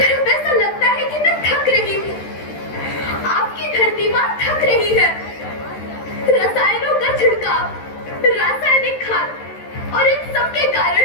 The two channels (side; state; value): right; late; 13 ms